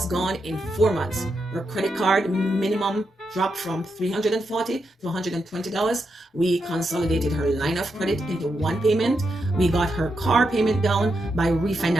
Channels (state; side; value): normal; both; correlation 0.84